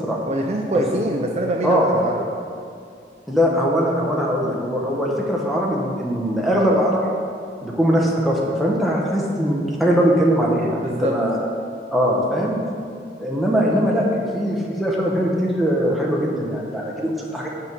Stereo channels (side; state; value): both; normal; correlation 0.62